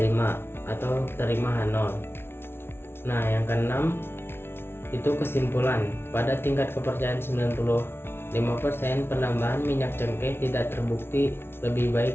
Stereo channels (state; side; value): late; right; 0.12 ms